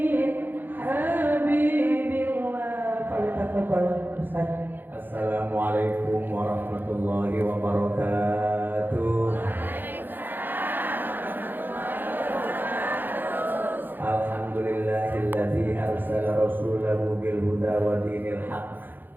حبيب الله. فلتفضل Ustaz. Assalamualaikum warahmatullahi wabarakatuh. Alhamdulillahilladzi arsala rasulahu bil huda wa dinil haqq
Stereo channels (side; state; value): left; late; 0.091 ms